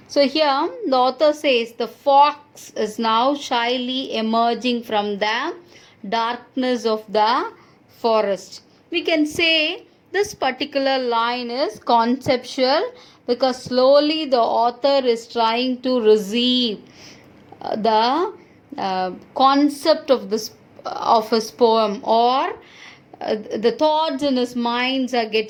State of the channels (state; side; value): identical; both; correlation 1.00